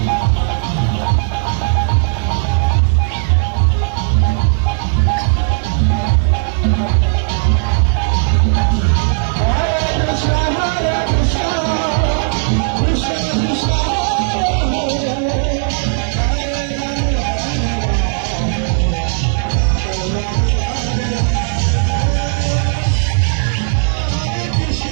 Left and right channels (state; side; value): silent; left; digital silence